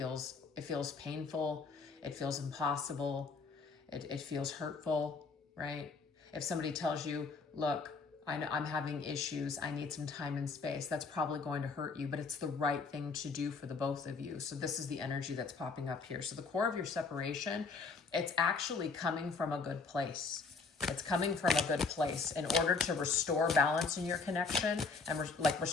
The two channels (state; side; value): quieter; right; 4.5 dB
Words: painful, it feels impossible, it feels hurtful, right? If somebody tells you, look, I'm having issues, I need some time and space, that's probably going to hurt you, but it's the right thing to do for the both of you. So this is the energy that's popping up here. So the core of your separation, it's actually coming from a good place. It's coming from a good place in order to restore balance in your connection and